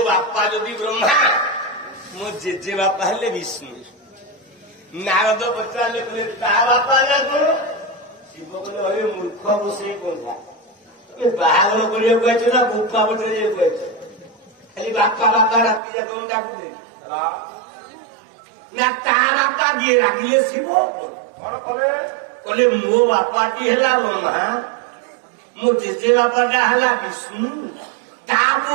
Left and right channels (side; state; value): left; drops out; at 15.8 s